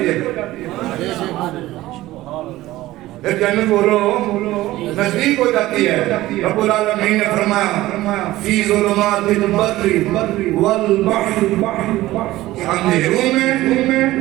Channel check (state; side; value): quieter; left; 16.7 dB